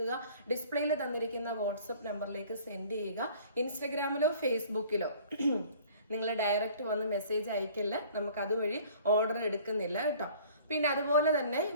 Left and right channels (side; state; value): both; inverted; correlation -0.50